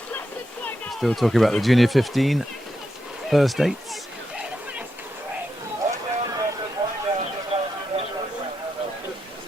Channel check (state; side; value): normal; both; correlation 0.85